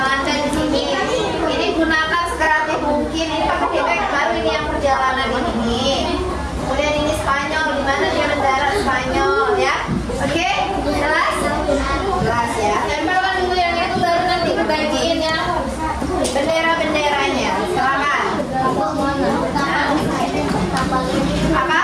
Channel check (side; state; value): both; identical; correlation 1.00